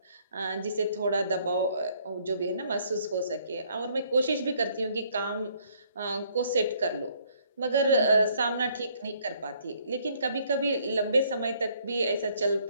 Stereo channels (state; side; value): inverted; both; correlation -0.65